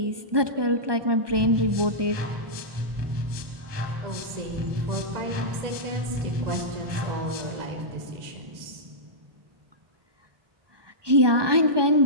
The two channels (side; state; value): left; late; 1.2 ms